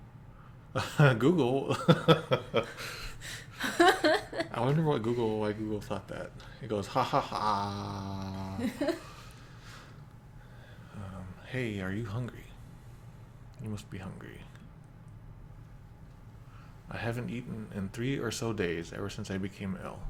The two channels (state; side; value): identical; both; correlation 1.00